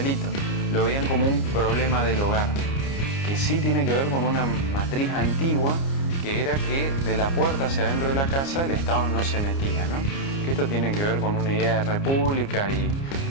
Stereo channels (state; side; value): late; right; 29 ms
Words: Lo veían como un problema del hogar, que sí tiene que ver con una matriz antigua, que era que de la puerta hacia adentro de la casa el Estado no se metía, ¿no? Que esto tiene que ver con una idea de república y